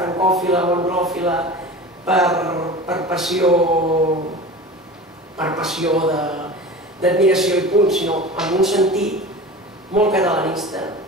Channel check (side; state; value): both; normal; correlation 0.34